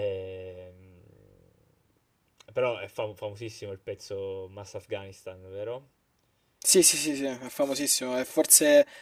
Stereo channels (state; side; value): identical; both; correlation 1.00